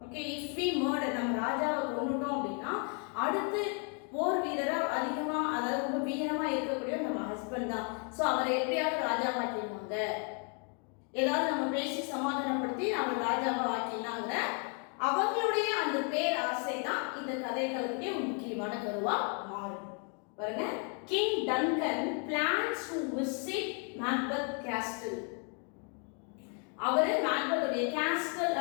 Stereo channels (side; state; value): right; quieter; 39.5 dB